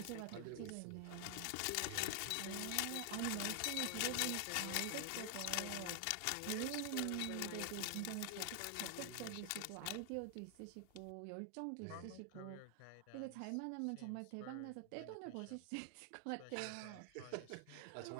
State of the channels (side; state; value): both; different; correlation 0.00